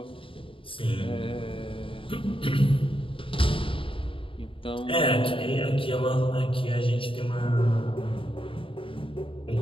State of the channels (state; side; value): late; right; 0.25 ms